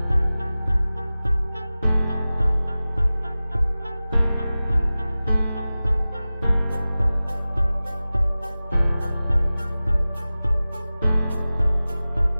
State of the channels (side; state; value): both; inverted; correlation -0.97